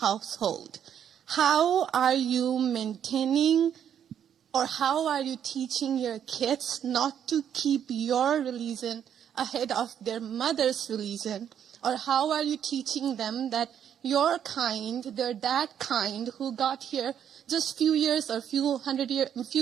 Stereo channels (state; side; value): quieter; left; 9.1 dB